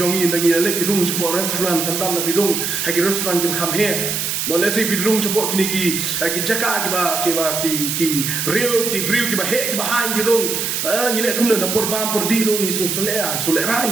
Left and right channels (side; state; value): right; noise; hiss, 1 dB below the sound